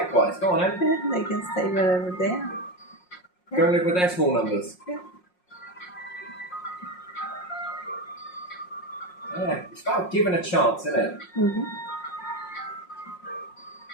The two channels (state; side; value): late; right; 5.5 ms